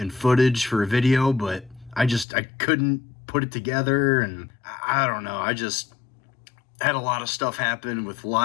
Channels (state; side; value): drops out; right; at 2.2 s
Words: footage for a video, but I couldn't put it together, and I don't know, I just had a lot of stuff happen with